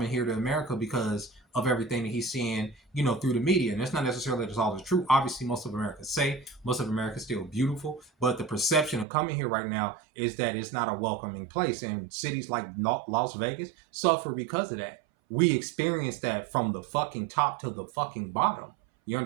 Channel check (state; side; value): drops out; left; at 9.1 s